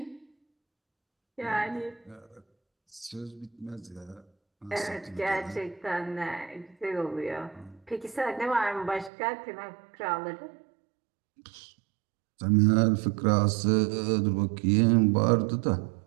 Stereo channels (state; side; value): drops out; left; at 9.1 s